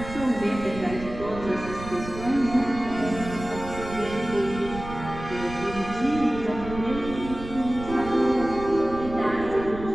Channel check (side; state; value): right; noise; rumble, 11 dB below the sound